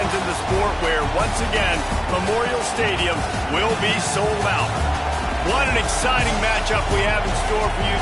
in the sport, where, once again, Memorial Stadium will be sold out. What an exciting matchup we have in store for you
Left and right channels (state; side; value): identical; both; correlation 1.00